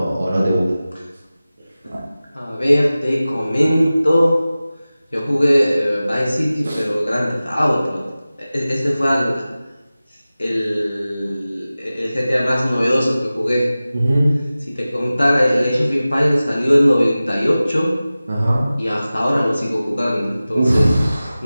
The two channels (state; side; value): inverted; both; correlation -0.97